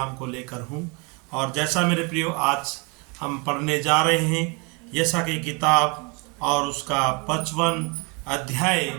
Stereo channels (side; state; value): left; quieter; 31.1 dB